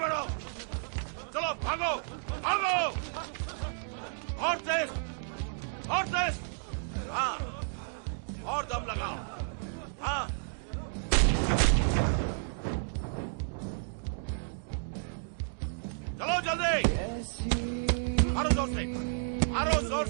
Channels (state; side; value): silent; left; digital silence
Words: चलो भागो भागो, और तेज, और तेज, हाँ, और दम लगाओ, हाँ, चलो जल्दी, मारो जोर से, मारो जोर